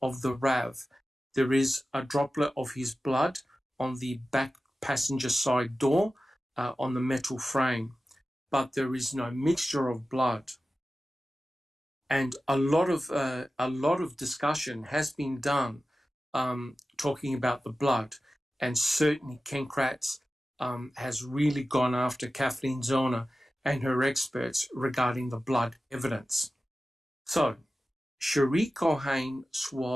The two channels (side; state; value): both; normal; correlation 0.94